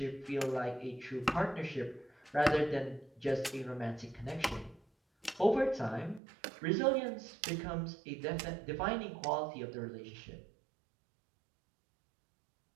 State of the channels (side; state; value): left; drops out; at 6.2 s